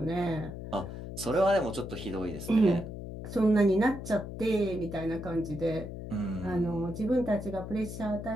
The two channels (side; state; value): left; noise; hum, 9 dB below the sound